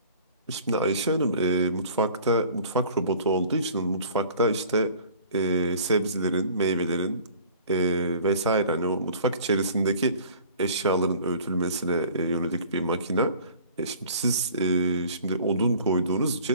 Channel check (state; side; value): inverted; both; correlation -0.48